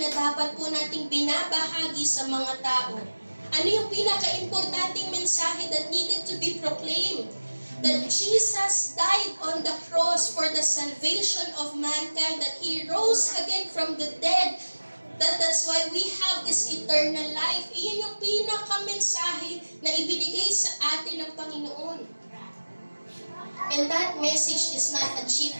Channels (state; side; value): inverted; both; correlation -1.00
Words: dapat po nating binabahagi sa mga tao. Ano yung pinaka-importanting mensahe that needed to be proclaimed? That Jesus died on the cross for the salvation of mankind, that He rose again from the dead, that's why we have this eternal life. Iyon yung pinaka-mensahe na ibinigay sa atin ng Panginoon. And that message is not a cheap